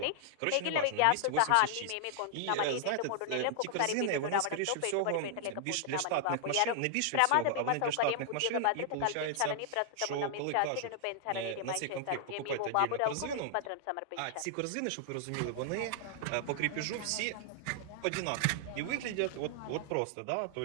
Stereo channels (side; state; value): both; different; correlation -0.01